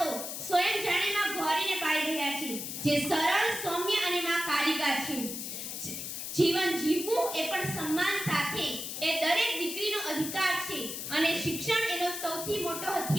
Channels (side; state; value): left; noise; hiss, 6 dB below the sound